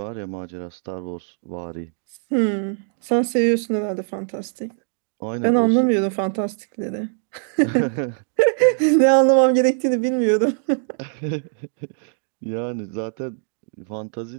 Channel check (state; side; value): silent; left; digital silence